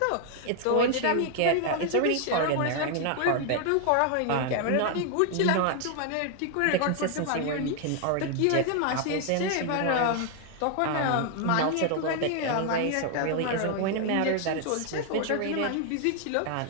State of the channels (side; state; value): both; different; correlation 0.00